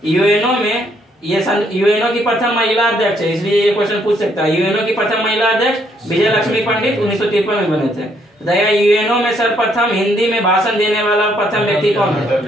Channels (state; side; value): normal; both; correlation 0.70